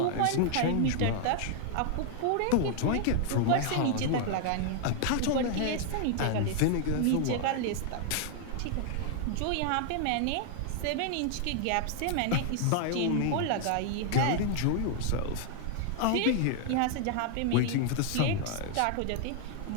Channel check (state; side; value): different; both; correlation 0.00